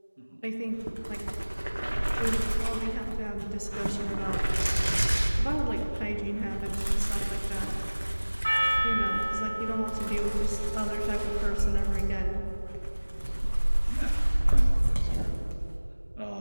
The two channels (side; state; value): both; inverted; correlation -1.00